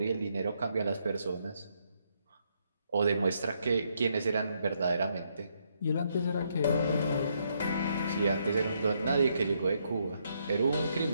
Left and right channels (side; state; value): both; inverted; correlation -0.75